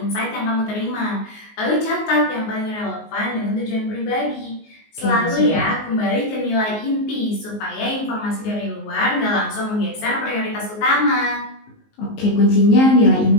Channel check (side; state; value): right; late; 19 ms